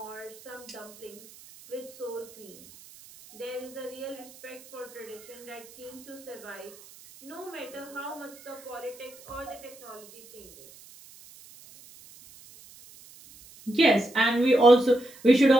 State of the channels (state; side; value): noise; right; hiss, 21 dB below the sound